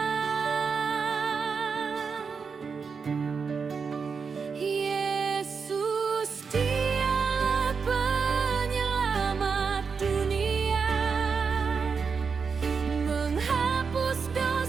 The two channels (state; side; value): quieter; left; 5.5 dB